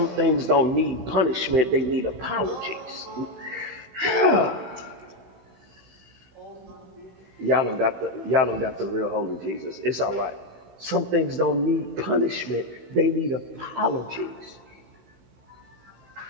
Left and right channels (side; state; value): left; late; 15 ms